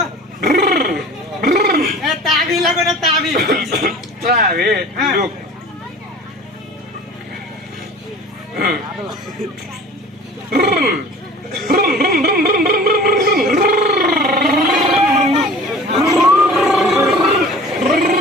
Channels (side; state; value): both; normal; correlation 0.43